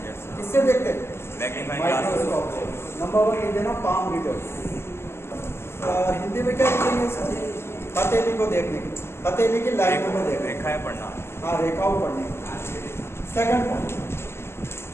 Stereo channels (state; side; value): late; right; 0.12 ms